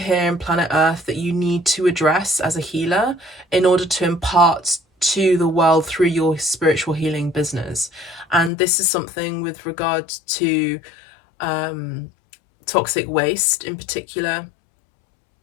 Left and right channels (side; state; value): right; drops out; at 8.5 s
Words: in planet Earth that you need to address as a healer in order to impart to the world through your spiritual healing business. And this is something with regard to toxic waste in particular.